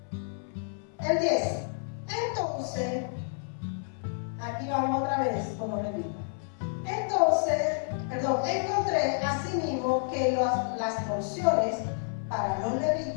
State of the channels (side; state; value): right; silent; 58 dB below the other